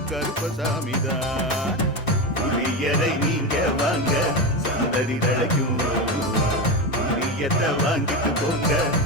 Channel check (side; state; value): both; normal; correlation 0.17